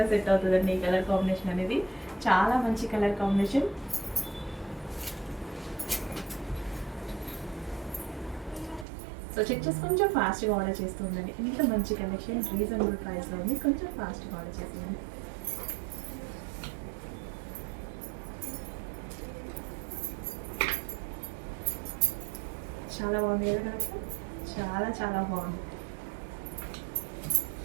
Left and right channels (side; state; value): left; drops out; at 8.8 s